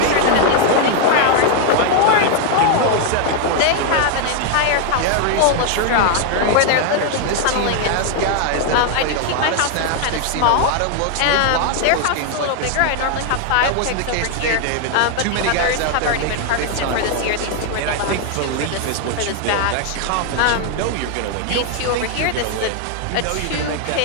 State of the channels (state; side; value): different; both; correlation 0.00